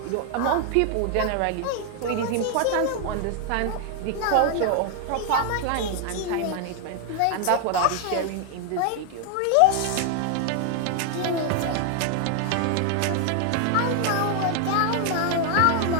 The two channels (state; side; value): different; both; correlation 0.00